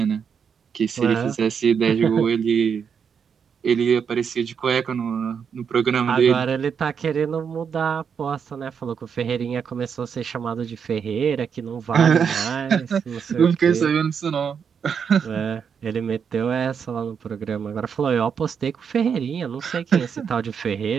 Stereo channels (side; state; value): left; quieter; 6.9 dB